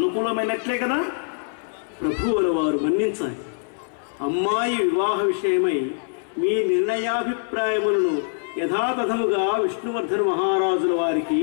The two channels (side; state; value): right; silent; 59 dB below the other